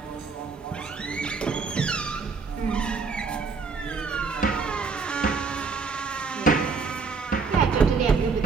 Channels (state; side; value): quieter; left; 4.9 dB